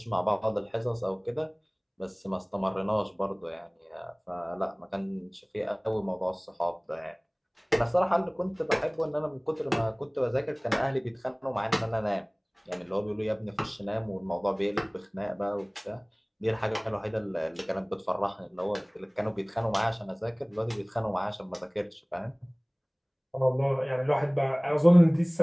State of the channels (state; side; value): identical; both; correlation 1.00